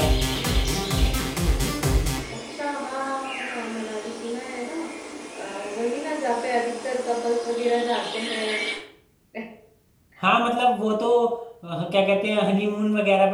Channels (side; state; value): both; identical; correlation 1.00